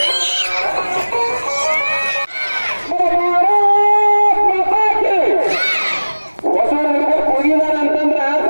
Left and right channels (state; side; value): inverted; both; correlation -1.00